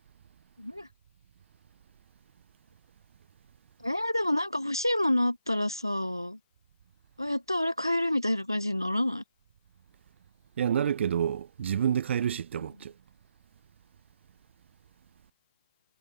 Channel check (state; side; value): inverted; both; correlation -0.85